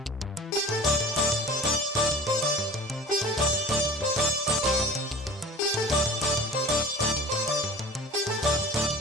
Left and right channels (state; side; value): normal; both; correlation 0.40